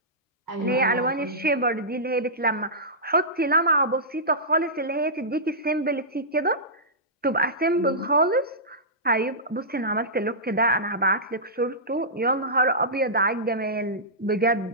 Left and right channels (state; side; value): normal; both; correlation -0.16